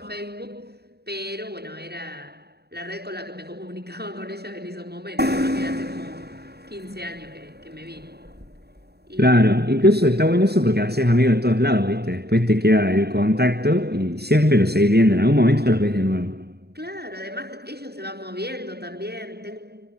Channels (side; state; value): left; late; 0.47 ms